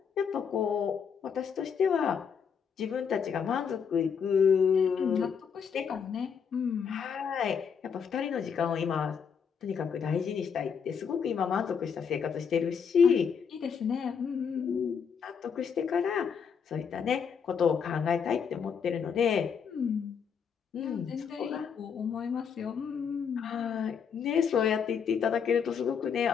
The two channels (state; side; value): quieter; right; 6.8 dB